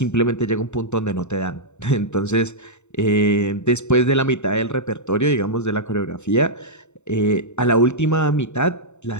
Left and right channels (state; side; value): late; right; 0.83 ms